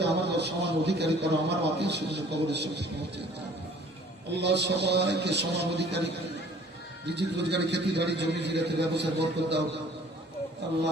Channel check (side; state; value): both; normal; correlation 0.53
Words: আমার সমান অধিকারী করো, আমার আত্মীয় স্বজন কবরের সাথে পৌঁছে দাও। আল্লাহ সবাইকে সমান অধিকারী, রিজিক রোজগারি, খেতি বাড়ি, জমি জিরাতে ব্যবসায় বরকত দাও।